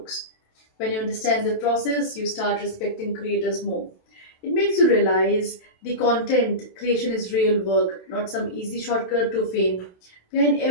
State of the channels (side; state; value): right; late; 27 ms